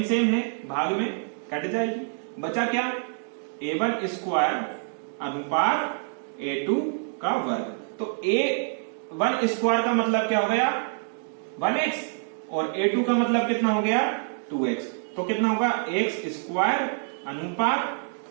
है भाग में कट जाएगी। बचा क्या? a1² अनुपात a2 का वर्ग। तो a1² का मतलब क्या हो गया? 1x, और a2 का मतलब कितना हो गया? 2x, तो कितना होगा x स्क्वायर अनुपात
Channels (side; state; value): left; silent; 61 dB below the other